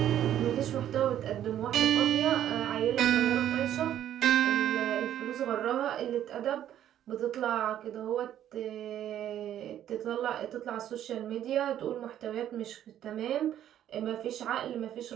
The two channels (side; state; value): left; quieter; 11.2 dB